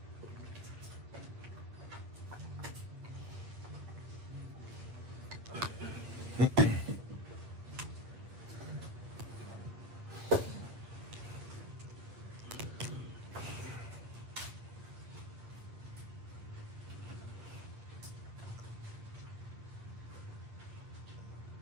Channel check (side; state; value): left; late; 9.0 ms